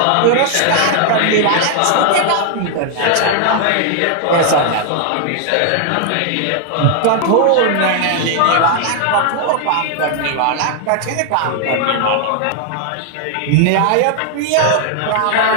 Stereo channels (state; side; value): different; both; correlation 0.00